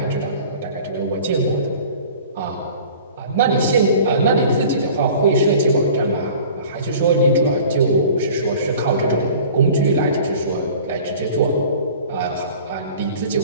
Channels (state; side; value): inverted; both; correlation -0.45